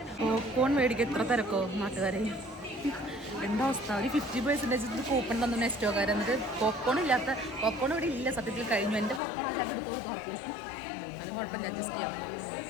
പോപ്കോൺ മേടിക്കുക എത്ര തിരക്കോ നാട്ടുകാരെ. എന്താ അവസ്ഥ? ഒരു 50% കൂപ്പൺ തന്നു നെസ്റ്റോക്കാർ. എന്നിട്ട് പോപ്കോൺ ഇവിടെ ഇല്ല. സത്യത്തിൽ കഴിഞ്ഞു. എൻ്റെ പോപ്കോൺ ആ ചാക്ക് എടുത്ത് കൊടുത്തു ആർക്കും. അത് കുഴപ്പമില്ല, അഡ്ജസ്റ്റ് ചെയ്യാം.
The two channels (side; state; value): right; drops out; at 9.2 s